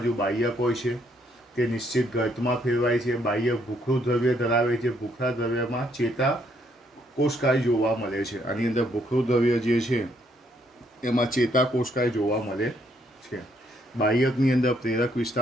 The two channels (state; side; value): normal; both; correlation 0.70